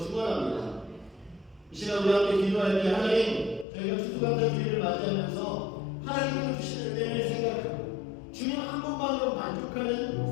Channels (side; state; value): right; drops out; at 3.7 s